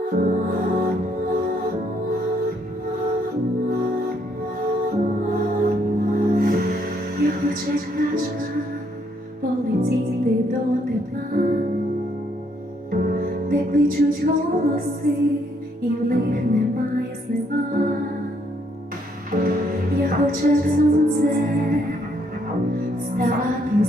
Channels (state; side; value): normal; both; correlation 0.70